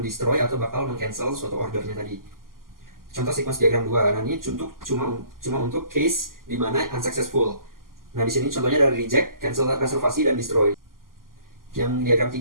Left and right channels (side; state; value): left; late; 0.91 ms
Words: atau bakal mengcancel suatu ordernya tadi. Contoh sequence diagram 2. Nah, ini cuma untuk case di mana unsuccessful. Nah, di sini contohnya ada reject, cancel reservasi, dan destroy. Yang diagram